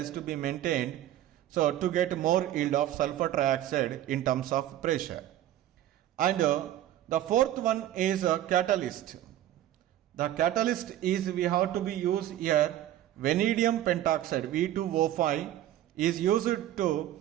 to be maintained. So to get more yield of sulfur trioxide in terms of pressure. And the fourth one is a catalyst. The catalyst is we have to be used here. Vanadium pentoxide V2O5 is used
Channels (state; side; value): quieter; left; 12.9 dB